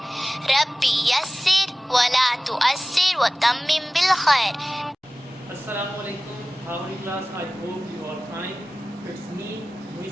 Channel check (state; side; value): normal; both; correlation 0.97